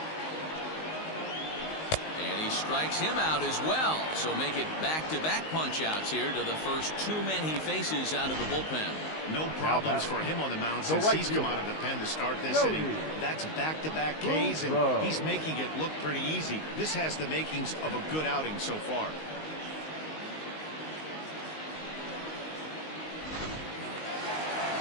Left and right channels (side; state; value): right; late; 19 ms